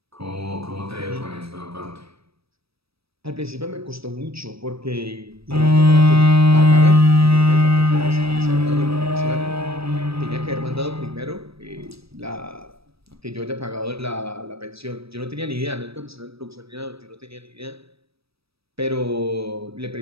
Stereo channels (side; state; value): left; late; 0.77 ms